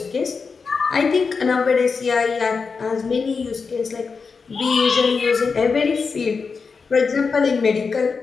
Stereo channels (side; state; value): right; quieter; 5.0 dB